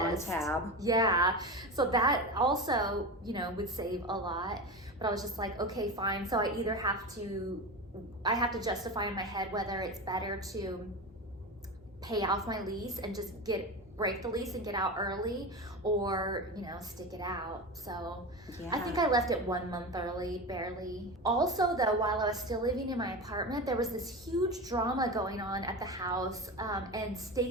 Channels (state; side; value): normal; both; correlation 0.24